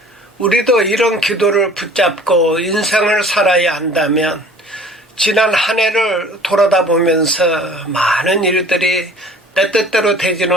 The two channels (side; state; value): both; normal; correlation 0.48